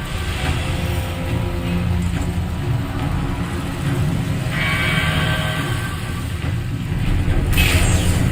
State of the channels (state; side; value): identical; both; correlation 1.00